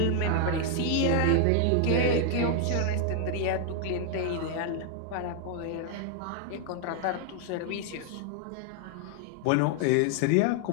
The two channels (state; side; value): different; both; correlation 0.00